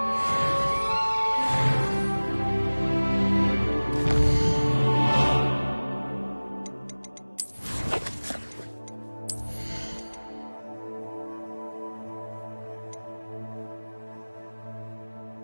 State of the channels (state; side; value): inverted; both; correlation -1.00